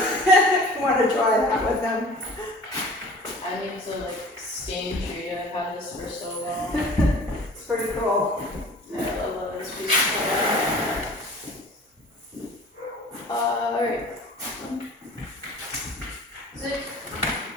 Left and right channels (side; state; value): both; normal; correlation 0.44